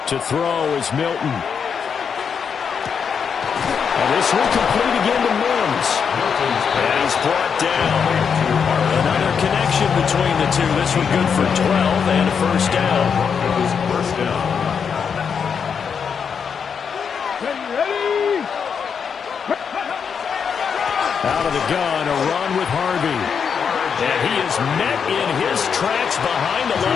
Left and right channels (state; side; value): quieter; right; 6.7 dB